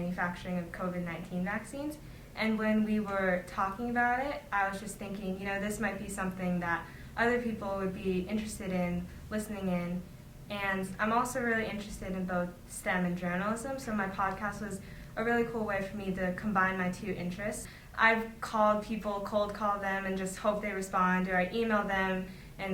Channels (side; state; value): both; identical; correlation 1.00